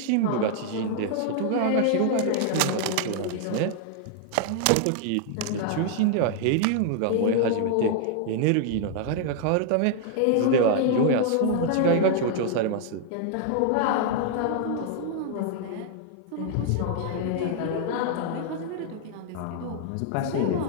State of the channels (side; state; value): both; different; correlation 0.00